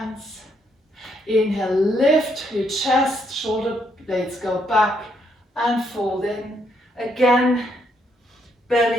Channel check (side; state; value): both; normal; correlation 0.74